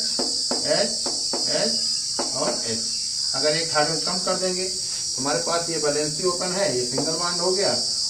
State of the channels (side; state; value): left; noise; rumble, 27 dB below the sound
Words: H H और H। अगर एक हाइड्रोजन कम कर देंगे तो हमारे पास ये वैलेंसी ओपन है, ये सिंगल बॉन्ड हो गया।